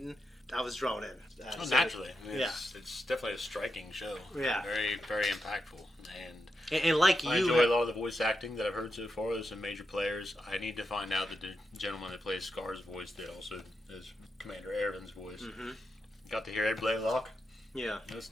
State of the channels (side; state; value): both; normal; correlation 0.86